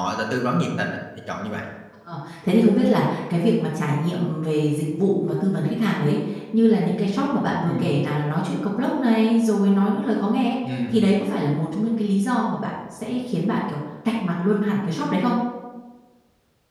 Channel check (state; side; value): identical; both; correlation 1.00